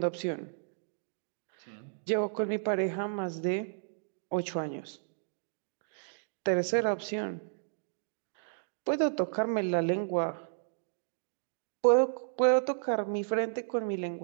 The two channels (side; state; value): left; silent; digital silence